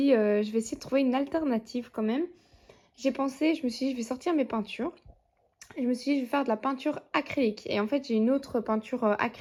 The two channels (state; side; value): identical; both; correlation 1.00